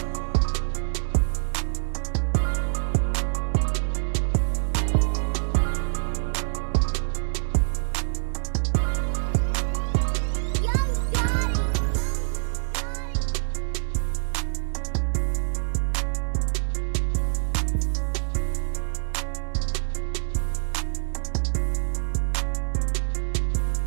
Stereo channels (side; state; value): left; silent; digital silence